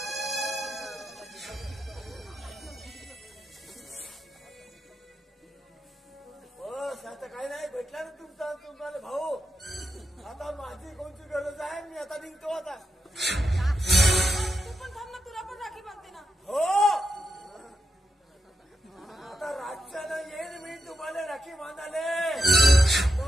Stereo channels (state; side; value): normal; both; correlation 0.85